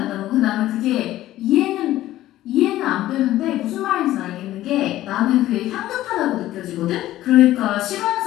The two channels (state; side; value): quieter; right; 14.6 dB